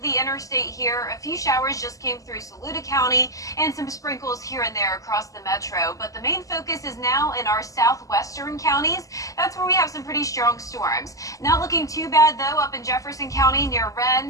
the interstate here. A few showers just came through Saluda County and some sprinkles here and there across the metro. But the main focus is now in our southwestern counties. That's where we have some pretty strong storms. Not looking too bad, though, up in Jefferson County near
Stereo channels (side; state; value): right; late; 0.16 ms